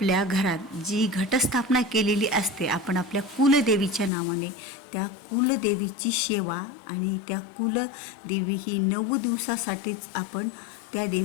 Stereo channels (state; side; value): drops out; right; at 4.1 s